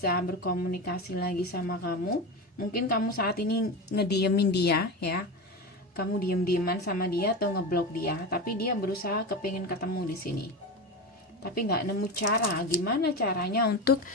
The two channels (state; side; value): normal; both; correlation 0.22